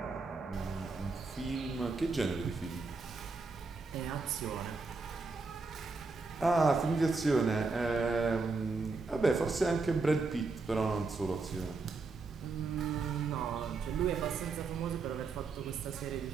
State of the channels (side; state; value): left; quieter; 4.0 dB